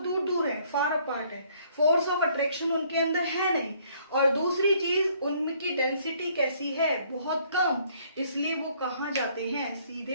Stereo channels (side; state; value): both; inverted; correlation -0.63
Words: दूर हैं, फार अपार्ट है, फोर्स ऑफ अट्रैक्शन उनके अंदर है नहीं। और दूसरी चीज, उनकी डेंसिटी कैसी है, बहुत कम, इसलिए वो कहाँ जाते हैं,